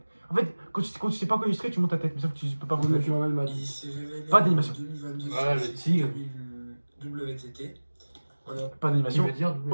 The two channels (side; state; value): both; inverted; correlation -1.00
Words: En fait, quand tu sais pas quoi illustrer, tu montes ta tête, mais sauf que tu peux pas monter ta tête. Je remets le match. Il s'est révélé Pas d'animation. en 2022 Voilà, le sur tigre. WTT. Voilà. Pas Qui d'animation. veut dire double-